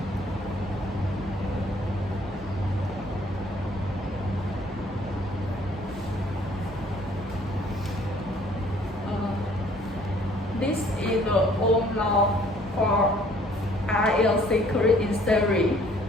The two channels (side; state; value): both; normal; correlation 0.59